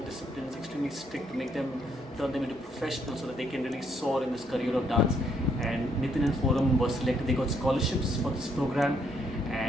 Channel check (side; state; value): both; normal; correlation 0.71